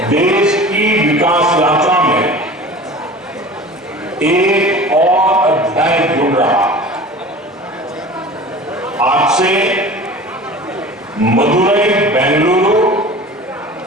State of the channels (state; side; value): normal; both; correlation 0.39